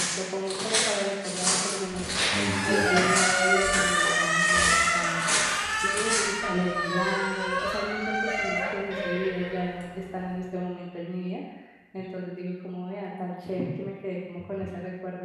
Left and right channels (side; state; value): both; identical; correlation 1.00